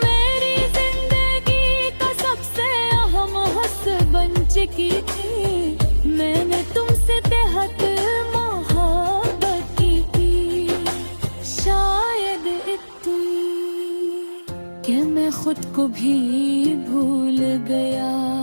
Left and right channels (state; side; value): inverted; both; correlation -1.00